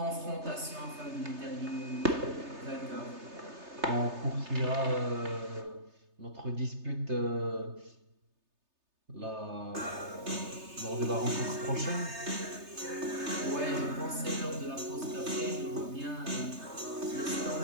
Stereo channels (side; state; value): left; late; 3.3 ms